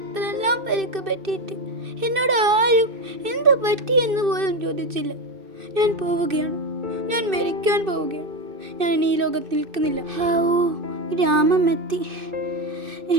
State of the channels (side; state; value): left; late; 2.6 ms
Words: പരിക്ക് പറ്റിയിട്ട് എന്നോട് ആരും എന്ത് പറ്റിയെന്ന് പോലും ചോദിച്ചില്ല. ഞാൻ പോവുകയാണ്. ഞാൻ മരിക്കാൻ പോവുകയാണ്. ഞാൻ ഇനി ഈ ലോകത്ത് നിൽക്കുന്നില്ല. ഗ്രാമം എത്തി.